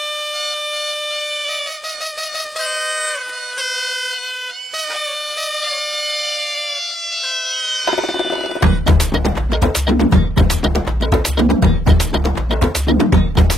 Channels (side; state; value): both; normal; correlation 0.79